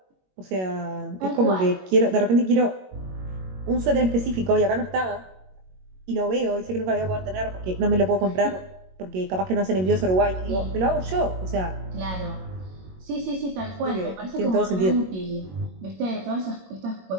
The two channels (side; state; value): left; late; 22 ms